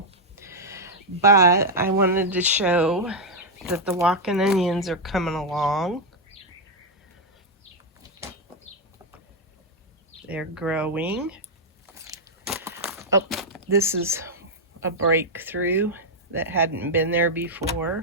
but I wanted to show that the walking onions are coming along. They're growing. Oh, this is a breakthrough that hadn't been there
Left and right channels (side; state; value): both; normal; correlation -0.01